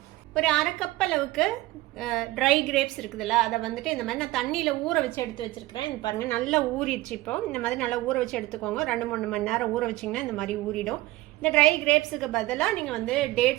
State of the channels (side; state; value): left; quieter; 18.3 dB